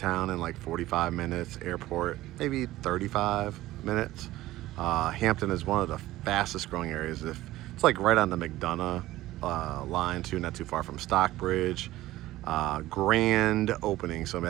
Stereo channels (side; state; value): left; quieter; 16.2 dB